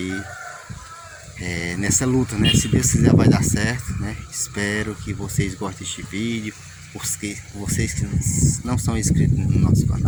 nessa luta, né? Se Deus quiser vai dar certo, né? Espero que vocês gostem deste vídeo. Vocês que não são inscritos no nosso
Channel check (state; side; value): identical; both; correlation 1.00